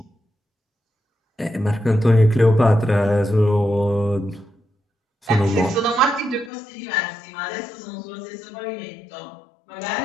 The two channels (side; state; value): right; drops out; at 6.5 s